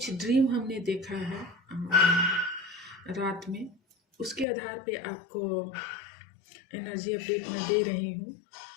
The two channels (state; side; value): drops out; right; at 4.5 s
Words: ड्रीम हमने देखा है रात में, उसके आधार पे आपको एनर्जी अपडेट मैं दे रही हूँ।